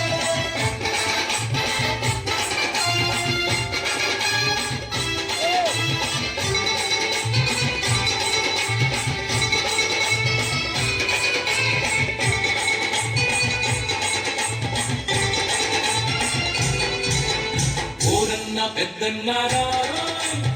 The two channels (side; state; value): both; identical; correlation 1.00